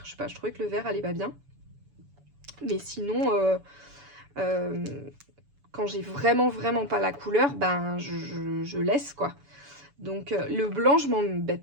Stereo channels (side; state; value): left; late; 7.0 ms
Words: Je sais pas, je trouvais que le vert allait pas bien. Mais sinon... quand j'ai vraiment pas la couleur, ben je laisse quoi. Donc le blanc, je m'embête